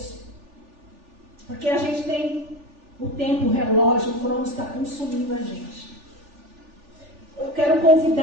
Porque a gente tem o tempo, o relógio, o crono está consumindo a gente. Eu quero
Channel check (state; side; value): late; left; 3.4 ms